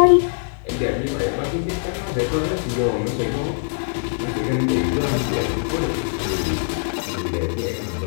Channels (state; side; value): silent; right; 60 dB below the other